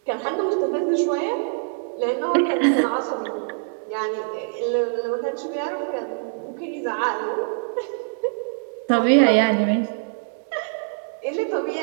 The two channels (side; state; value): left; silent; digital silence